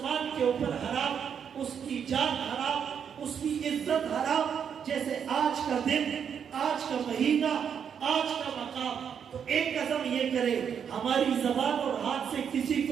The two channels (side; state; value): left; quieter; 7.7 dB